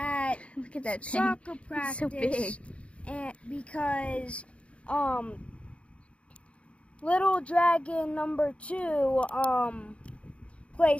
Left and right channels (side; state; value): right; late; 0.061 ms